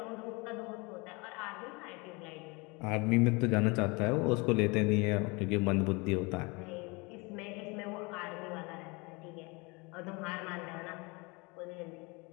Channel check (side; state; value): right; quieter; 27.7 dB